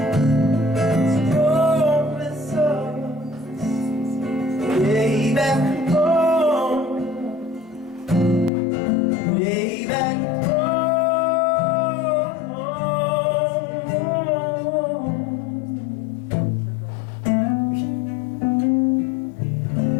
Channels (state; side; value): drops out; right; at 8.5 s